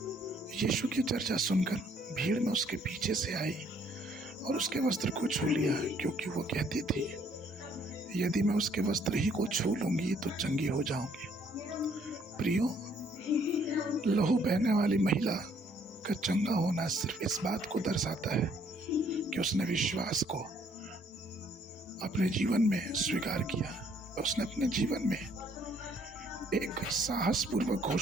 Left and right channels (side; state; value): both; normal; correlation 0.65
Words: यीशु की चर्चा सुनकर भीड़ में उसके पीछे से आई और उसके वस्त्र को छू लिया, क्योंकि वो कहती थी, यदि मैं उसके वस्त्र ही को छू लूंगी तो चंगी हो जाऊंगी। प्रियो, लहू बहने वाली महिला का चंगा होना सिर्फ इस बात को दर्शाता है कि उसने विश्वास को अपने जीवन में स्वीकार किया। उसने अपने जीवन में एक साहसपूर्वक